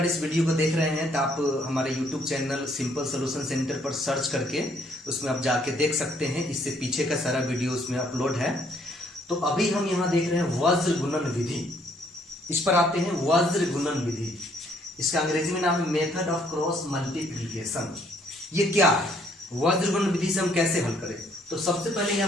इस वीडियो को देख रहे हैं तो आप हमारे YouTube channel simple solution centre पर सर्च करके उसमें आप जाके देख सकते हैं। इससे पीछे का सारा वीडियो उसमें अपलोड है। तो अभी हम यहाँ देख रहे हैं वज्र गुणन विधि। इस पर आते हैं वज्र गुणन विधि। इसका अंग्रेजी में नाम है मेथड ऑफ क्रॉस मल्टीप्लीकेशन। ये क्या है? वज्र गुणन विधि से हम कैसे हल करें? तो सबसे पहले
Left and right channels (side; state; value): both; normal; correlation 0.66